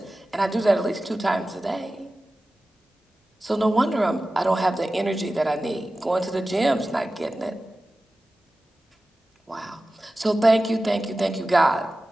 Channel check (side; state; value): both; normal; correlation 0.95